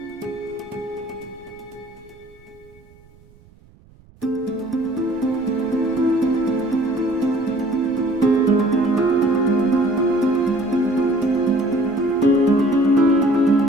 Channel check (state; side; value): noise; right; rumble, 27 dB below the sound